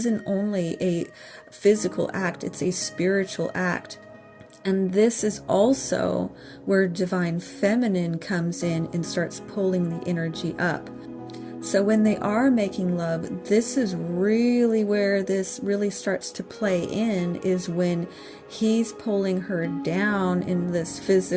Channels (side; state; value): both; identical; correlation 1.00